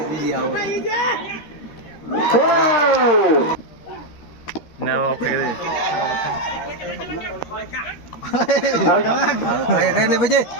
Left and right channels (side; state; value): right; late; 13 ms